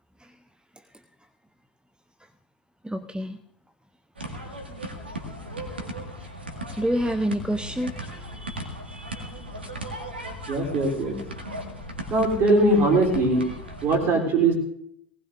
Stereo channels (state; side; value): normal; both; correlation 0.41